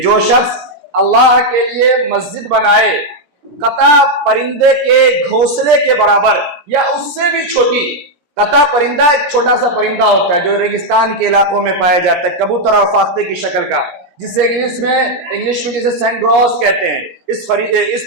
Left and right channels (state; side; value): late; left; 17 ms